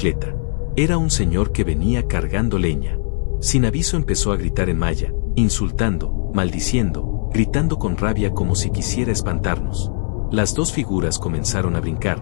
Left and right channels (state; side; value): silent; right; 58 dB below the other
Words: Era un señor que venía cargando leña. Sin aviso empezó a gritar en maya, insultando, maldiciendo, gritando con rabia como si quisiera espantarnos. Las 2 figuras comenzaron a